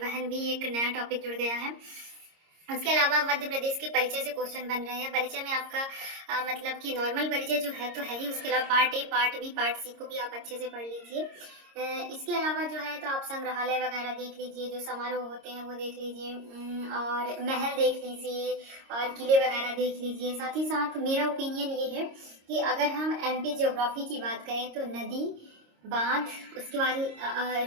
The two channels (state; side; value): late; left; 26 ms